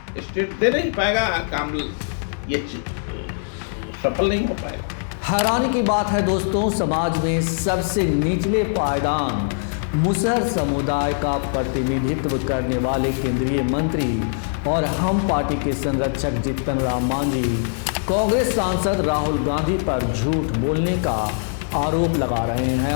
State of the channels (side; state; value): right; silent; digital silence